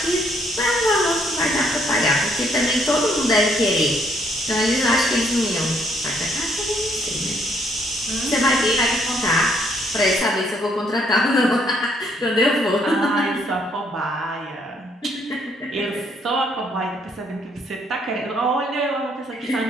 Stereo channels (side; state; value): both; normal; correlation 0.69